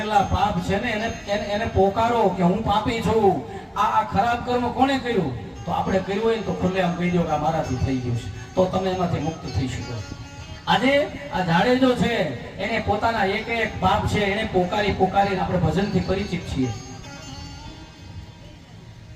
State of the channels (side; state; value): both; identical; correlation 1.00